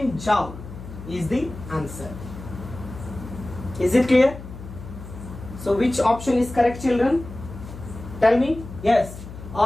joule is the answer. Is it clear? So which option is correct, children? Tell me. Yes.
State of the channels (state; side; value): noise; left; hum, 13 dB below the sound